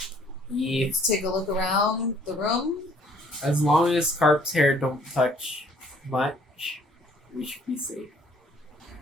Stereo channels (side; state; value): both; normal; correlation 0.60